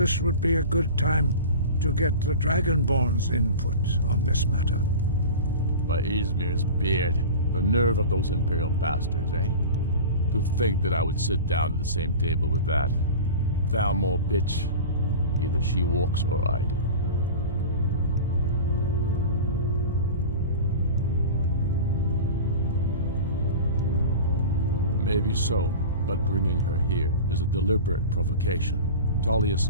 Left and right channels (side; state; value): both; inverted; correlation -0.33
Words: would be a good time to get the Dragonborn's input on this matter. By Izmir's beard, the nerve of those Imperial bastards, eh? To think that I would sit down at the same table with that. Thalmor bitch. Either she walks or I do. Maybe so, but bringing her here is a deliberate provocation. Tullius